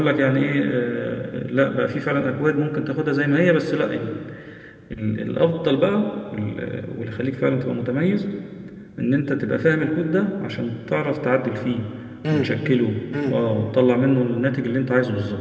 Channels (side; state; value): both; identical; correlation 1.00